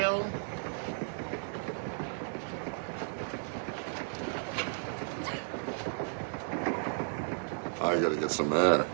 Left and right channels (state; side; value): silent; left; 55 dB below the other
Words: I gotta get some air.